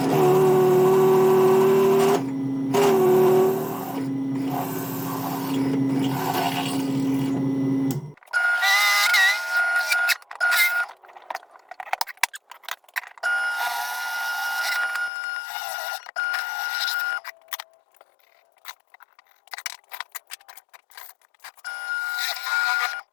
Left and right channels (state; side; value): drops out; right; at 15.1 s